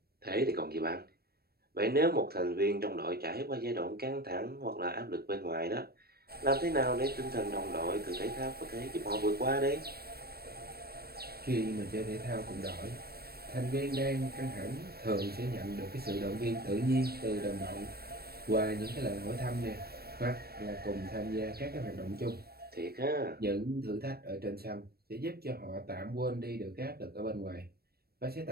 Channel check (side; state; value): left; late; 0.45 ms